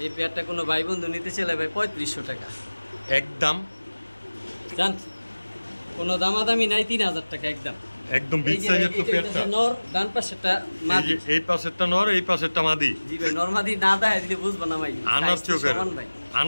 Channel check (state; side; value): inverted; both; correlation -1.00